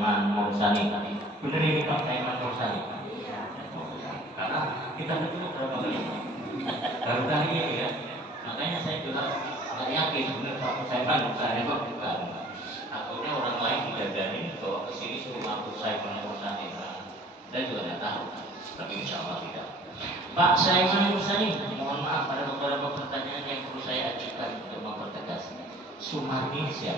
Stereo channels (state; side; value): normal; both; correlation 0.51